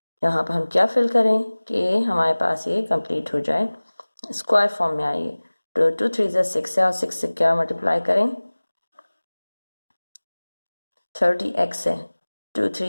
यहाँ पर हम क्या फिल करें कि हमारे पास ये कंप्लीट हो जाए, स्क्वायर फॉर्म में आइए। तो 2 3 ज़ा 6 है और 6 से क्या मल्टीप्लाई करें, 30x है, 2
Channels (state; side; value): inverted; both; correlation -1.00